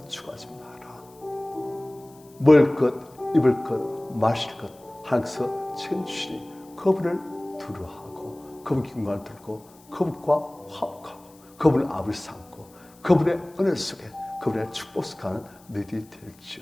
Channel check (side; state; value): left; noise; hiss, 27 dB below the sound